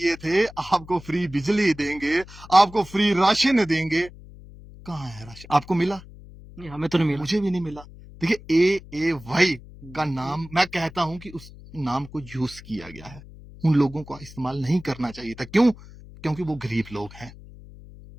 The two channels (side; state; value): left; noise; hum, 18 dB below the sound